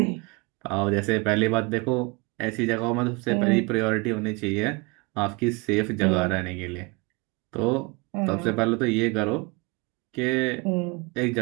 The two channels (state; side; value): quieter; left; 27.3 dB